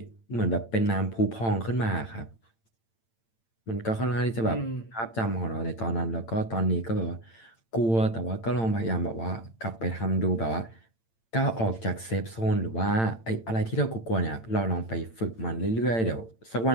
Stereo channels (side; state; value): right; late; 8.9 ms